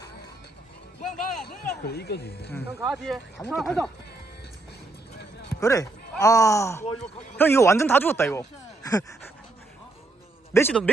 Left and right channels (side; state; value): left; quieter; 3.0 dB